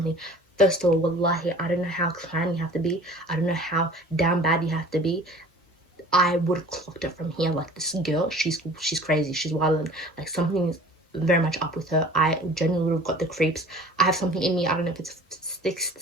First of all, wallahi, I don't know how clan you have to be. I don't know how damn bad you have to be. I would have clocked it from here. Like, this girl, she's crazy. She's wild. Like, something's very much up with her. I genuinely would have got the creeps. I have something in me. I don't know if it's sixth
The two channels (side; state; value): both; normal; correlation 0.46